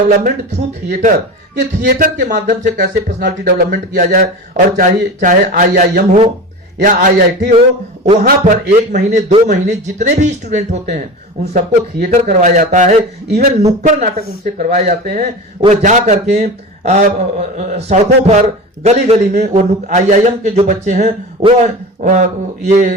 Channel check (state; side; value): normal; both; correlation 0.30